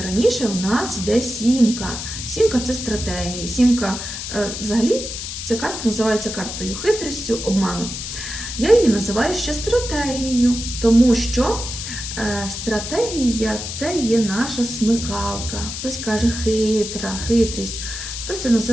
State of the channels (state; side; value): noise; left; hiss, 7 dB below the sound